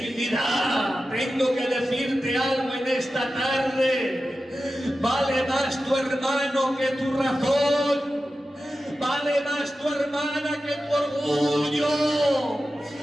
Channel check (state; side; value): normal; both; correlation 0.93